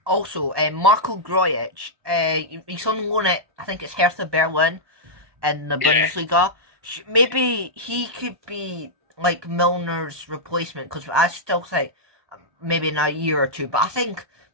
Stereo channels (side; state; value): left; late; 1.2 ms